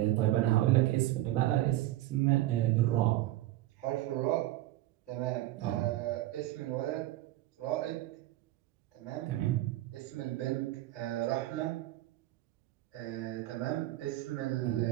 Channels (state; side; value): quieter; left; 15.7 dB